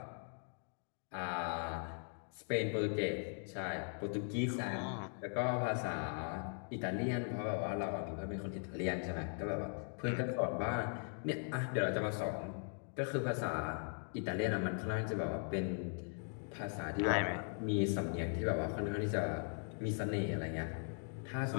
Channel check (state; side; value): silent; right; 51 dB below the other